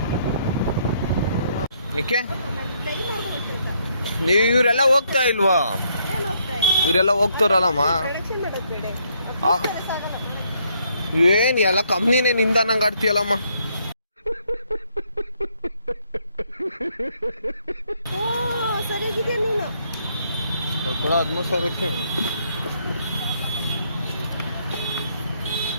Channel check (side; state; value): both; inverted; correlation -0.71